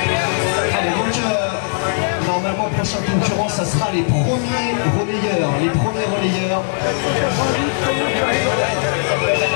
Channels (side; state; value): right; silent; digital silence